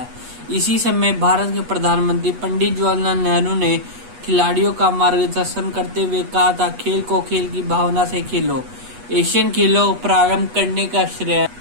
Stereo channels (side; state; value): left; late; 8.2 ms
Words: इसी समय भारत के प्रधानमंत्री पंडित जवाहरलाल नेहरू ने खिलाड़ियों का मार्गदर्शन करते हुए कहा था, खेल को खेल की भावना से खेलो। एशियन खेलों को प्रारंभ करने का